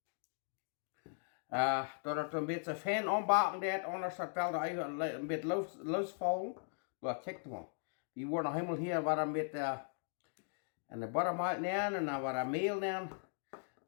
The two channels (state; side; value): silent; right; digital silence